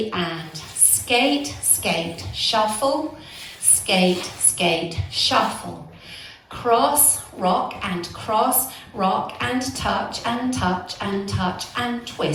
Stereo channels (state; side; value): identical; both; correlation 1.00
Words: and skate, skate, shuffle, skate, skate, shuffle. Cross, rock and cross, rock and touch and touch and touch and